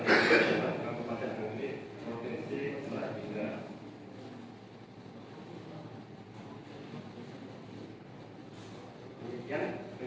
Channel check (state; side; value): identical; both; correlation 1.00